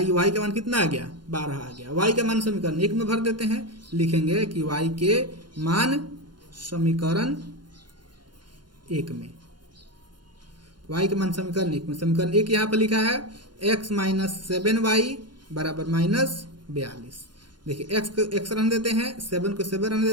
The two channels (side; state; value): left; late; 0.71 ms